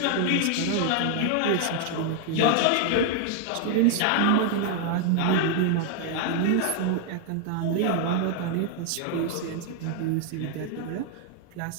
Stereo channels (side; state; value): both; different; correlation 0.00